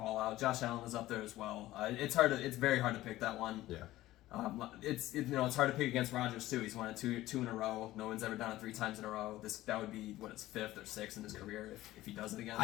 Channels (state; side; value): quieter; right; 16.0 dB